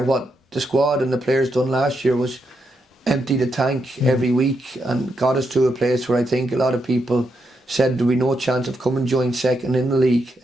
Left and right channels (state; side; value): normal; both; correlation 0.82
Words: What the squad and the players done last year was empty the tank every week and got us to a place where I think a lot of people said there would be no chance of coming joint second in the league,